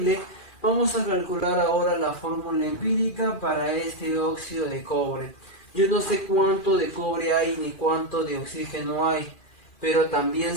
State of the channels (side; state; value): right; late; 2.4 ms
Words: Vamos a calcular ahora la fórmula empírica para este óxido de cobre. Yo no sé cuánto de cobre hay ni cuánto de oxígeno hay, pero también